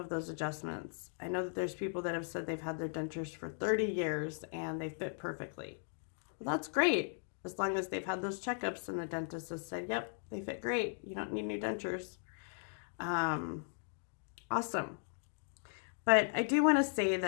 those adjustments. I know that there's people that have said they've had their dentures for 30 years and they fit perfectly. Well, that's great, as long as they've had those checkups and the dentist has said, yep, they fit great. You don't need new dentures. Awesome. But I do want to say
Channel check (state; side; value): silent; right; digital silence